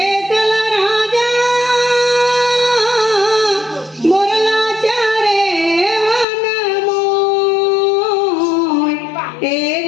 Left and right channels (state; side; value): drops out; right; at 6.2 s